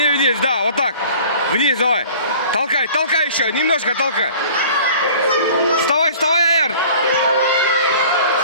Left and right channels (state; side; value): inverted; both; correlation -0.46